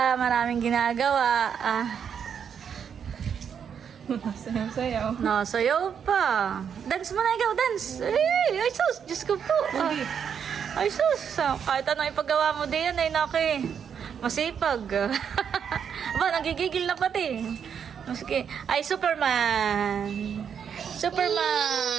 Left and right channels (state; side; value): quieter; left; 7.6 dB